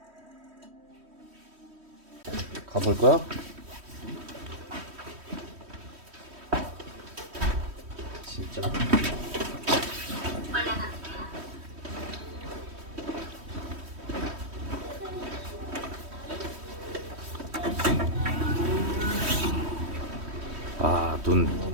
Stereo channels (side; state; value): left; late; 3.1 ms